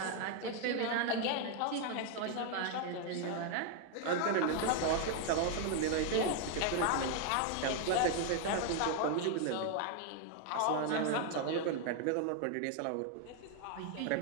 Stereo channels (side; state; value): both; different; correlation 0.01